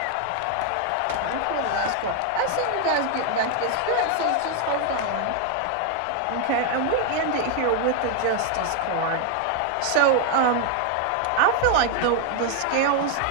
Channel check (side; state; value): both; different; correlation 0.00